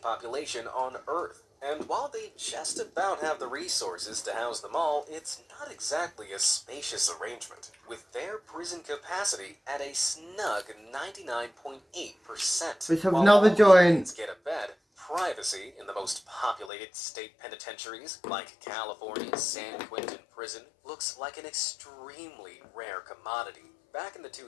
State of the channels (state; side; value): drops out; right; at 16.7 s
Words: population on Earth. And while they just about have the resources to house them all, it's not exactly a spacious arrangement, with their prison capacity at a snug 99.8%. Let's have While another all joint. inmates get a bed, privacy in the most populated state penitentiaries, like California's San Quentin prison, looks like an extremely rare commodity. Back in the